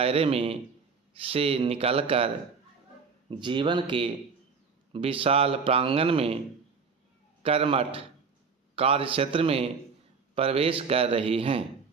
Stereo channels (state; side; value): quieter; left; 5.3 dB